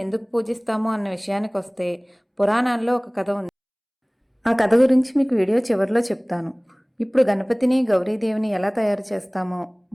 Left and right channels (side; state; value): both; identical; correlation 1.00